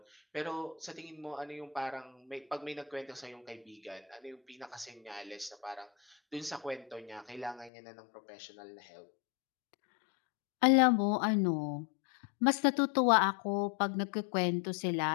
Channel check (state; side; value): drops out; right; at 7.7 s